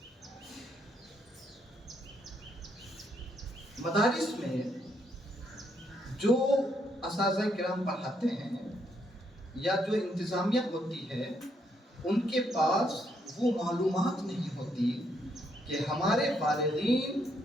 مدارس میں جو اساتذہ کرام پڑھاتے ہیں یا جو انتظامیہ ہوتی ہے، ان کے پاس وہ معلومات نہیں ہوتی کہ ہمارے فارغین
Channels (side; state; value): both; normal; correlation 0.74